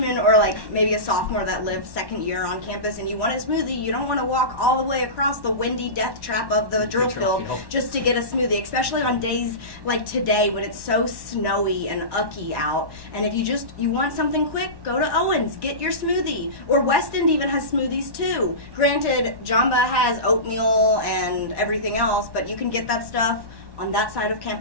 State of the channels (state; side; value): late; left; 1.1 ms